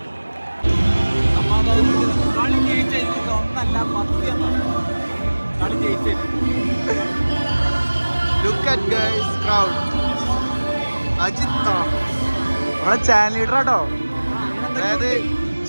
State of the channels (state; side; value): inverted; both; correlation -1.00